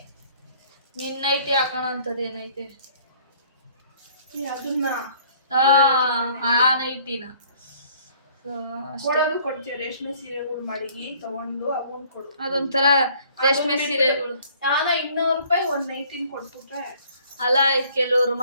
ನಿನ್ನ ನೈಟಿ ಹಾಕೋಣ ಅಂಥದ್ದು ಏನೈತೆ? ಅದನ್ನ ಆ ನೈಟಿನ ಕೊಡೋದು ಕೊಡ್ತೀವಿ. ರೇಷ್ಮೆ ಸೀರೆಗಳು ಮಾಡಿ ತಗೊಂಡು ಅವನ್ ಕೊಡು. ಅದೊಂಥರ ರೇಷ್ಮೆ ಸೀರೆಗಳು ನಾನು 200 ರೂಪಾಯಿ ಒಂದು ನೈಟಿನ ಕೊಟ್ಬಿಟ್ರೆ ಅಲ್ಲ. ಕೆಲವರು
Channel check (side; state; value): both; inverted; correlation -0.57